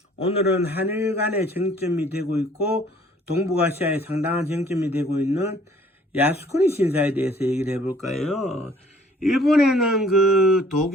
오늘은 한일 간의 쟁점이 되고 있고, 동북아시아에 상당한 쟁점이 되고 있는 야스쿠니 신사에 대해서 얘기를 해볼까요? 일본에는 그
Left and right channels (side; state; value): both; normal; correlation 0.57